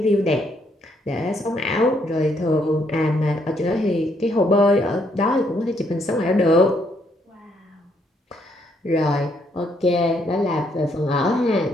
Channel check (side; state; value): both; normal; correlation 0.72